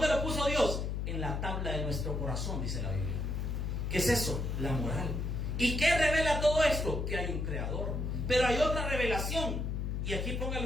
lo puso Dios? En la tabla de nuestro corazón, dice la Biblia. ¿Qué es eso? La moral. ¿Y qué revela todo esto? Que hay un creador. Pero hay otra revelación. Y aquí póngale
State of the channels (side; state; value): left; noise; hum, 1 dB below the sound